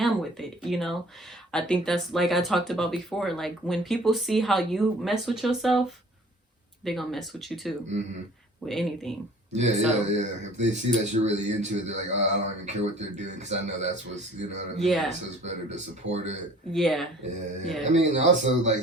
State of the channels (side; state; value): both; normal; correlation 0.50